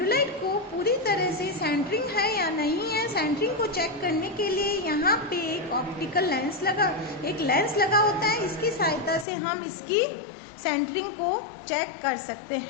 को पूरी तरह से सेंटरिंग है या नहीं है, सेंटरिंग को चेक करने के लिए यहाँ पे एक ऑप्टिकल लेंस लगा होता है। इसकी सहायता से हम इसकी सेंटरिंग को चेक कर सकते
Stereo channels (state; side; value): drops out; right; at 9.2 s